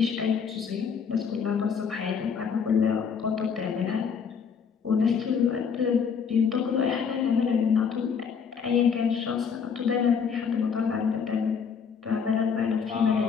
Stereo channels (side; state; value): right; quieter; 6.5 dB